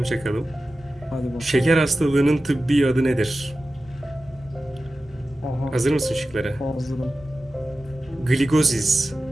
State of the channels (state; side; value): normal; both; correlation 0.94